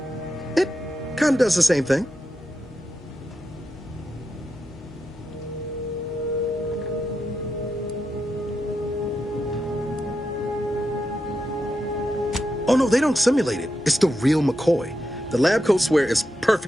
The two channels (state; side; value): normal; both; correlation 0.87